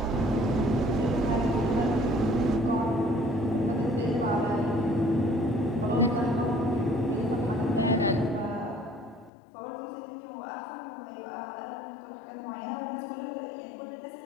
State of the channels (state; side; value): drops out; right; at 9.3 s